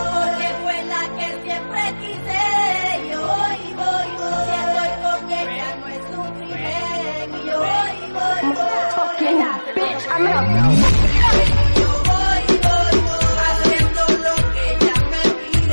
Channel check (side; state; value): both; inverted; correlation -1.00